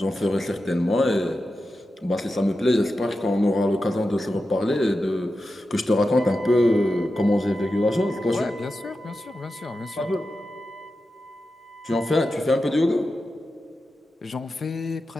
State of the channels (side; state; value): both; normal; correlation 0.91